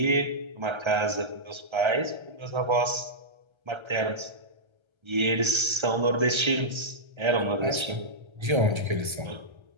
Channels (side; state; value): left; late; 1.3 ms